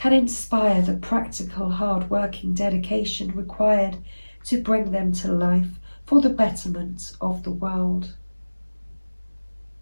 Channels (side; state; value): both; inverted; correlation -1.00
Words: inspire the practical, hard-working dedication required to bring them to life for the betterment of the world.